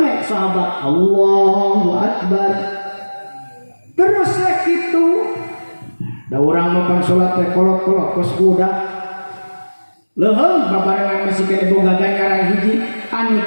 sahabat. Allahu akbar. Terus rek kitu. Da urang mah salat teh kolot-kolot kos budak. Leuheung babarengan masih kene boga ganjaran hiji anu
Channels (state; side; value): inverted; both; correlation -1.00